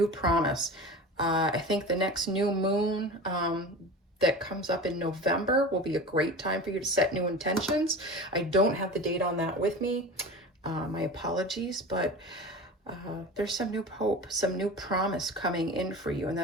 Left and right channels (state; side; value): normal; both; correlation 0.33